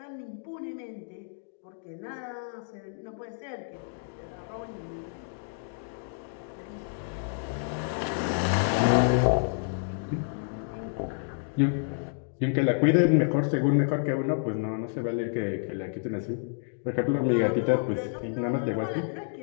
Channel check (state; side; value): silent; right; digital silence